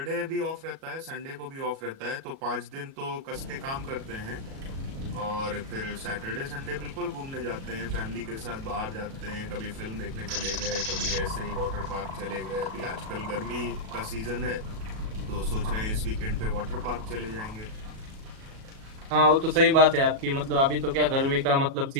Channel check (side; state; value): left; late; 37 ms